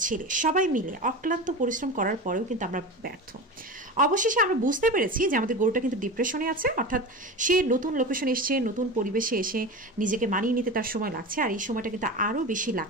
ছেলে, সবাই মিলে অক্লান্ত পরিশ্রম করার পরেও কিন্তু আমরা ব্যর্থ। অবশেষে আমরা বুঝতে পেরেছি যে আমাদের গরুটা কিন্তু ডিপ্রেশনে আছে, অর্থাৎ সে নতুন লোকেশনে এসছে, নতুন পরিবেশে এসে নিজেকে মানিয়ে নিতে তার সময় লাগছে, আর এই সময়টা কিন্তু আরও বেশি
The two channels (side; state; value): both; normal; correlation 0.27